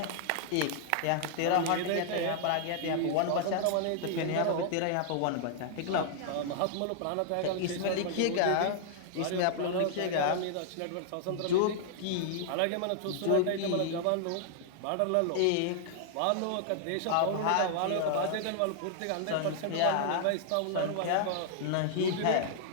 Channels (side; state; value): both; different; correlation -0.01